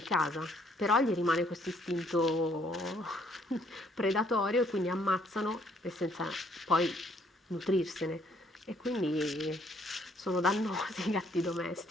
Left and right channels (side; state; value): both; normal; correlation 0.66